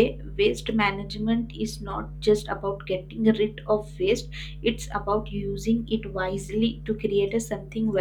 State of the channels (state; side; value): identical; both; correlation 1.00